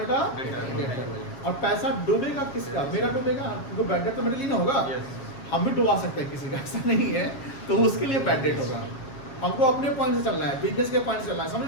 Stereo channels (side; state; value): right; late; 7.4 ms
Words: डेटर। और पैसा डूबेगा किसका? मेरा डूबेगा, क्योंकि बैड डेट तो मेरे लिए ना होगा। हम भी डुबा सकते हैं किसी का, ऐसा नहीं है, तो उसके लिए बैड डेट होगा। हमको अपने पॉइंट से चलना है, बिजनेस के पॉइंट से चलना है, समझ